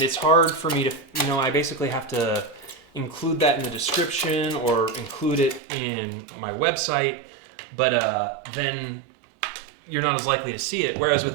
it's hard for me to, I basically have to include that in the description or include it in my website, but then you're not as likely to see it. Whereas with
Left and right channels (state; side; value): drops out; left; at 5.6 s